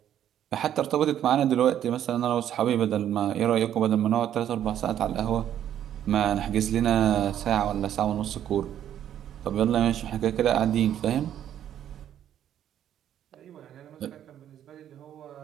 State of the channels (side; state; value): left; quieter; 10.6 dB